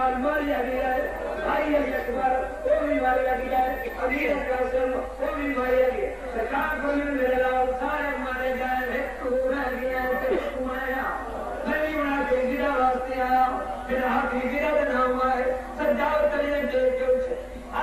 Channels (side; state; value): both; identical; correlation 1.00